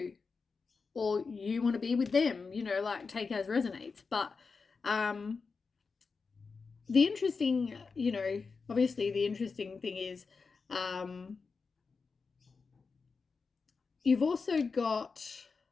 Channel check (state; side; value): quieter; right; 4.8 dB